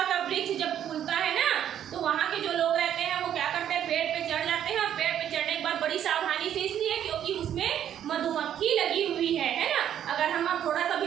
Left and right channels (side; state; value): left; quieter; 10.2 dB